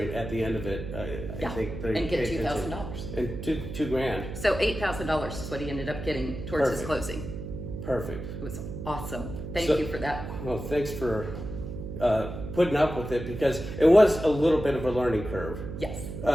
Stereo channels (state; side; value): noise; right; hum, 8 dB below the sound